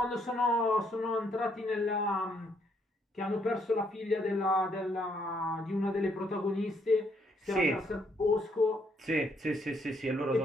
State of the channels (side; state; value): both; normal; correlation 0.71